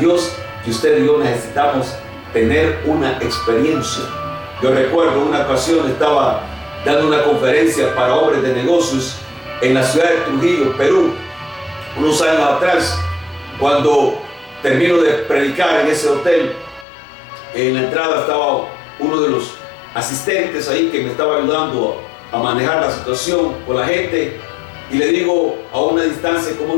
que usted y yo necesitamos tener una experiencia. Yo recuerdo una ocasión estaba dando una conferencia para hombres de negocios en la ciudad de Trujillo, Perú, unos años atrás. Cuando termino de predicar en ese hotel, en la entrada estaba uno de los asistentes ahí que me estaba ayudando a manejar la situación con la gente, y le digo a una distancia como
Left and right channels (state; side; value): drops out; right; at 16.9 s